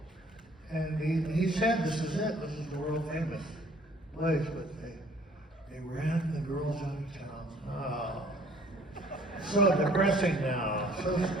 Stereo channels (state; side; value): normal; both; correlation 0.57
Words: and he said, "This is it. This is the world famous place." But they ran the girls out of town. Oh, so depressing now. So